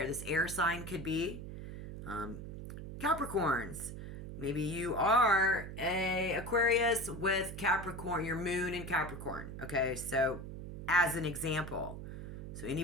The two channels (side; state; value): right; noise; hum, 9 dB below the sound